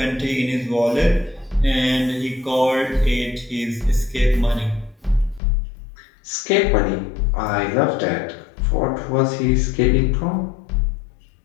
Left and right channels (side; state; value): right; drops out; at 5.4 s